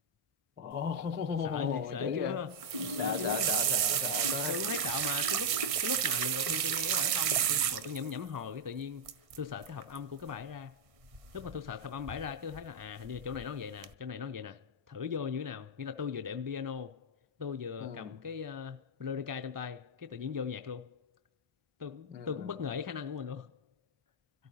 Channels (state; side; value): late; left; 1.5 ms